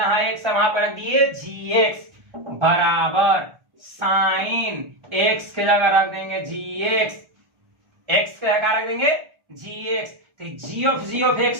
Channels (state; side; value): late; left; 1.4 ms